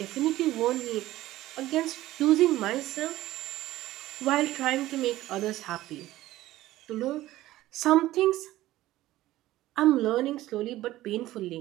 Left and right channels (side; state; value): left; quieter; 15.8 dB